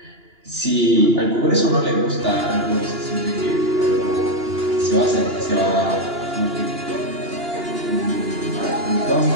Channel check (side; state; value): left; late; 2.9 ms